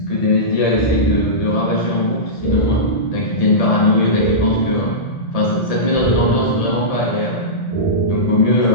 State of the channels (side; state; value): right; late; 1.7 ms